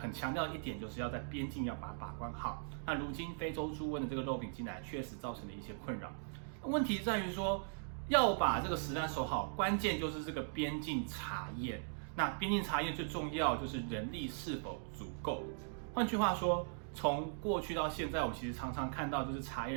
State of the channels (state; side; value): silent; left; digital silence